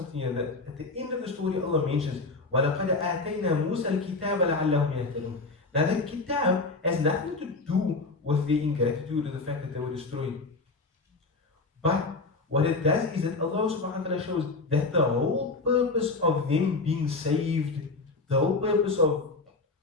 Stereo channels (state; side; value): quieter; right; 3.6 dB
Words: here, that at the end of the story Allah mentions, وَلَقَدْ آتَيْنَا مُوسَى الْكِتَابَ لَعَلَّهُمْ يَهْتَدُونَ. Now the kitab has nothing to do with their ingratitude or the fact that they were destroyed. But what it does is that Allah subhanahu wa ta'ala shows that the whole purpose of them being saved, the whole purpose of